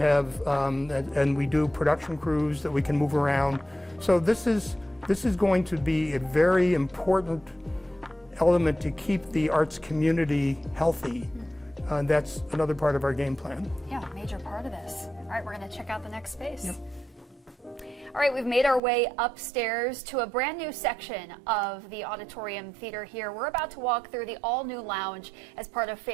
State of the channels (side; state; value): left; drops out; at 18.8 s